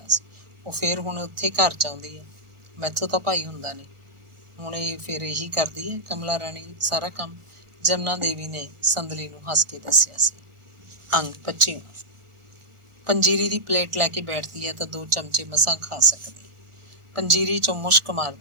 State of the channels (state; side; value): late; left; 1.4 ms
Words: ਸੀ। ਉਹ ਫਿਰ ਹੁਣ ਉੱਥੇ ਘਰ ਚਾਹੁੰਦੀ ਹੈ। ਮੈਥੋਂ ਤਾਂ ਭਾਈ ਹੁੰਦਾ ਨਹੀਂ। ਹੁਣ ਇਹ ਫਿਰ ਇਹੀ ਕਰਦੀ ਹੈ ਕਮਲਾ ਰਾਣੀ ਸਾਰਾ ਕੰਮ। ਜਮਨਾ ਦੇਵੀ ਨੇ ਸੰਦਲੀ ਨੂੰ ਹੱਸ ਕੇ ਦੱਸਿਆ ਸੀ। ਅੰਗ 25। ਪੰਜੀਰੀ ਦੀ ਪਲੇਟ ਲੈ ਕੇ ਬੈਠਦੀ ਹੈ ਤਾਂ 2 ਚਮਚੇ ਮਸਾਂ ਖਾ ਸਕਦੀ। ਪੰਜੀਰੀ ਚੋਂ ਮੁਸ਼ਕ